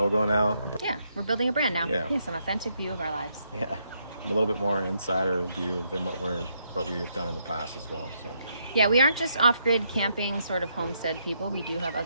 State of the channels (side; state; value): both; inverted; correlation -0.77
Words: now. Yeah, we're building a brand now. Yeah, yes, an authentic view of our lives. Yeah, a little bit more insider view than what we've done in the past as well. So yeah, we aren't just off-grid camping sort of homestead people. We do have